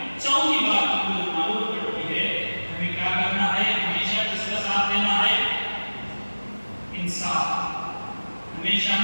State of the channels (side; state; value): both; inverted; correlation -1.00